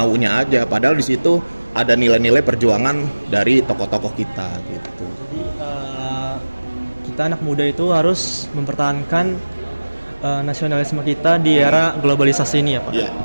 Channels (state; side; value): inverted; both; correlation -1.00